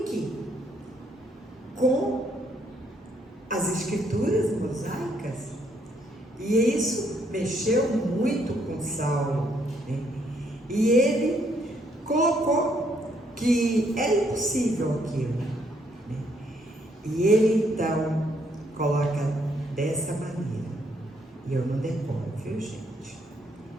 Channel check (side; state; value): both; normal; correlation 0.71